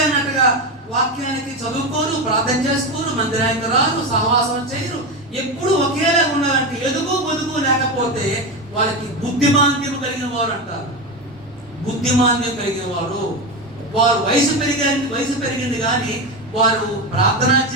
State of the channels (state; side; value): normal; both; correlation 0.17